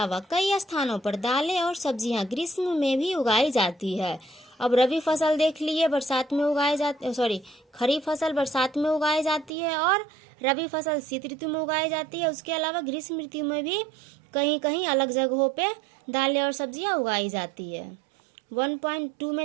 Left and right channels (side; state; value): left; drops out; at 9.5 s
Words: कई स्थानों पर दालें और सब्जियां ग्रीष्म में भी उगाई जाती है। अब रबी फसल देख लिए, बरसात में उगाई जाती, खरीफ फसल बरसात में उगाई जाती है और रबी फसल शीत ऋतु में उगाई जाती है। उसके अलावा ग्रीष्म ऋतु में भी कहीं कहीं अलग जगहों पे दालें और सब्जियां उगाई जाती है। 1.2